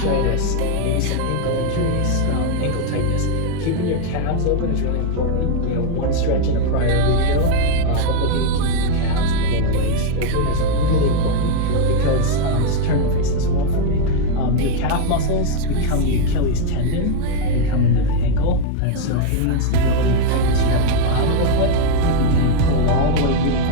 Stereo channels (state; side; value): different; both; correlation 0.01